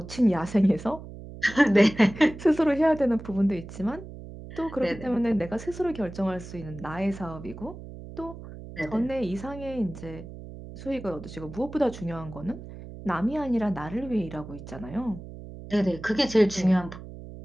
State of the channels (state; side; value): noise; right; hum, 13 dB below the sound